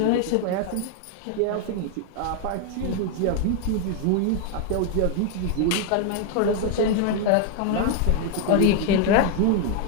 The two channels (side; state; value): both; different; correlation 0.01